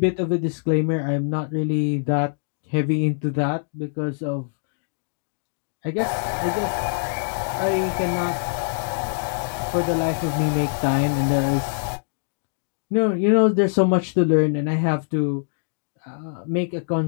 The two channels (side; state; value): right; silent; digital silence